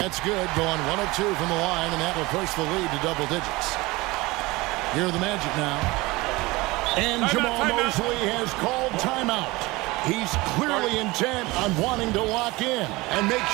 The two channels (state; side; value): quieter; left; 21.8 dB